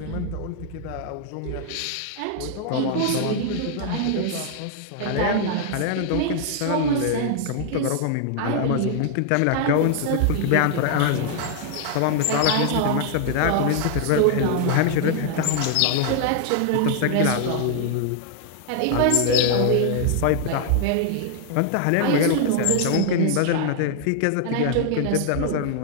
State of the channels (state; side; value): different; both; correlation 0.00